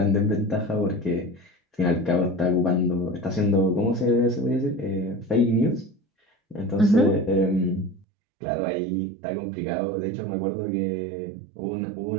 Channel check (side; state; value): left; drops out; at 8.1 s